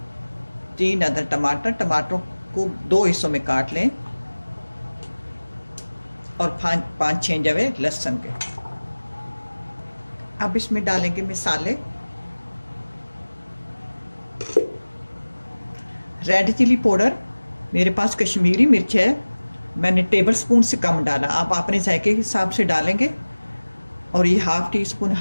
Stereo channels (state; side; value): inverted; both; correlation -1.00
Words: 3 अदर टमाटर। टमाटरों को 2 हिस्सों में काट लें और 5-6 जवे लहसुन के। अब इसमें डालेंगे मसाले। रेड चिली पाउडर, मेरे पास कश्मीरी मिर्च है, मैंने टेबल स्पून से कम डाला। आप अपने जायके के हिसाब से डालेंगे। और ये ½ टीस्पून